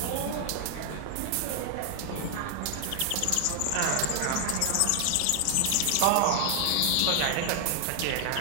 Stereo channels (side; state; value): both; different; correlation 0.00